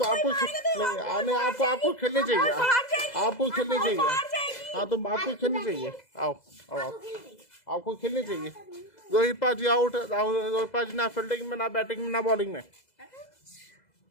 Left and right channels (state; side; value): late; right; 2.0 ms